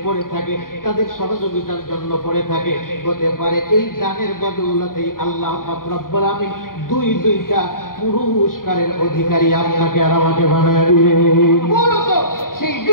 পড়ে থাকে, তাদের সহযোগিতার জন্য পড়ে থাকে, হতে পারে এই দানের বদৌলতেই আল্লাহ পাক রব্বুল আমিন দুইটা পুরস্কারের অধিকারী আপনাকে আর আমাকে বানায় দিবে। মূলত সেই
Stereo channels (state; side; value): late; right; 0.91 ms